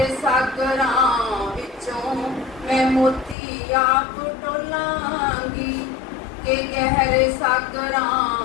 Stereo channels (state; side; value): drops out; right; at 3.4 s